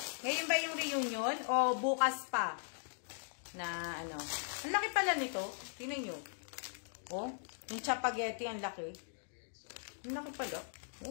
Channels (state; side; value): silent; right; digital silence